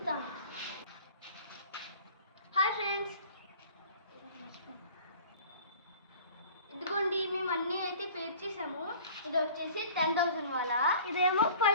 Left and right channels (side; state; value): both; inverted; correlation -0.46